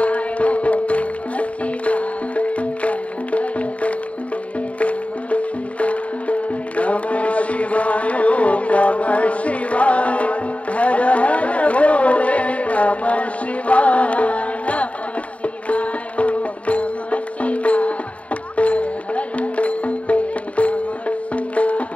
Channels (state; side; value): late; right; 0.066 ms